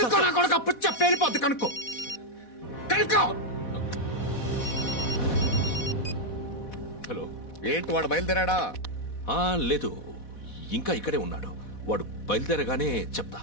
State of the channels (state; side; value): late; right; 4.1 ms